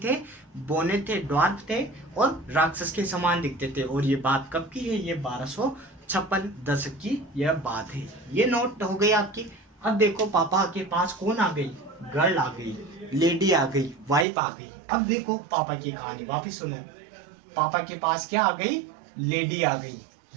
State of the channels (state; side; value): drops out; left; at 14.2 s